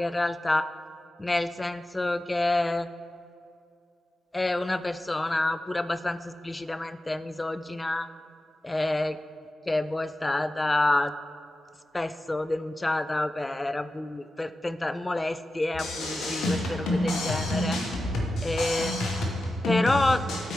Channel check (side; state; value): both; normal; correlation 0.93